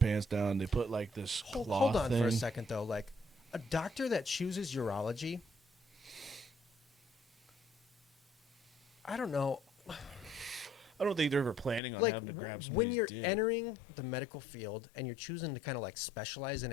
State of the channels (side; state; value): right; drops out; at 11.8 s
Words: down. They put like this cloth Hold on thing. for a second though. Like a doctor that chooses urology, I don't know. I don't think they're ever planning on having to grab somebody's when you're dick. entering the medical field and you're choosing to kind of like specialize in